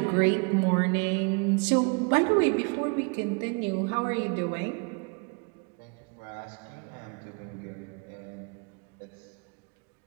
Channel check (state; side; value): quieter; left; 34.2 dB